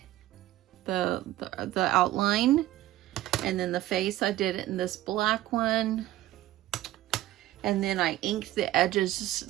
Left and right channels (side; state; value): left; quieter; 15.1 dB